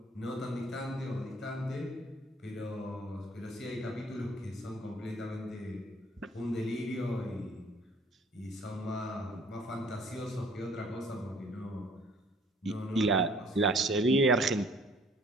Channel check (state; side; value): normal; both; correlation 0.56